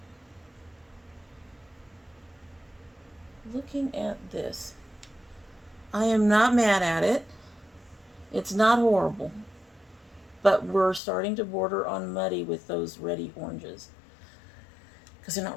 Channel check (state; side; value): drops out; right; at 11.0 s